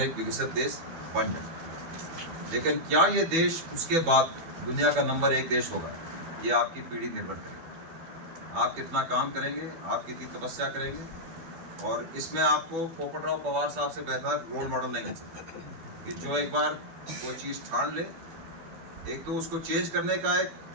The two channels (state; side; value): late; left; 12 ms